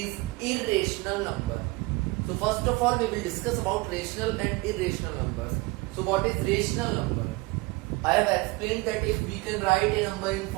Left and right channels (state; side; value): quieter; left; 23.7 dB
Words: irrational number. So first of all, we will discuss about rational and irrational numbers. So what is rational number? I have explained that if we can write a number in